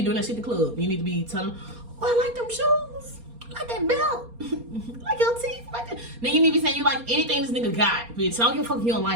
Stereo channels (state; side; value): late; left; 4.3 ms